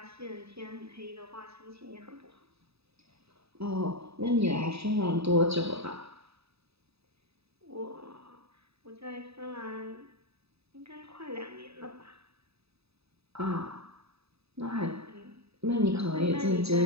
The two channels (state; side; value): late; left; 0.78 ms